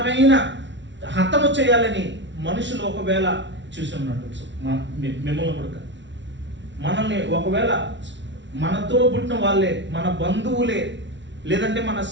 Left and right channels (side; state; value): left; late; 0.53 ms